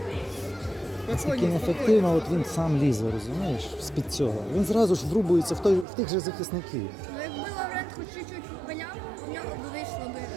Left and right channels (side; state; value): left; drops out; at 5.9 s